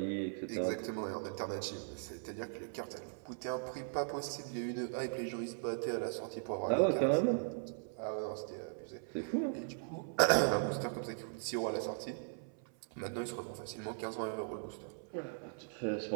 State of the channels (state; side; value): silent; left; 52 dB below the other